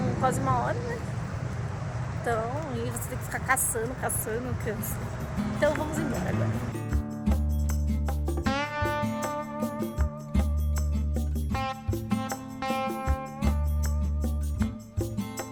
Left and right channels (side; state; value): both; identical; correlation 1.00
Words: quase 1 hora, né? Então, e você tem que ficar caçando, cansa. Então vamos embora agora.